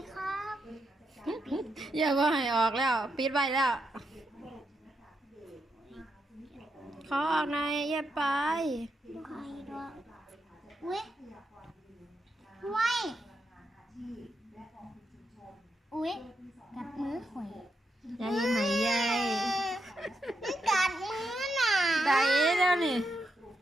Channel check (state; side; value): normal; both; correlation 0.83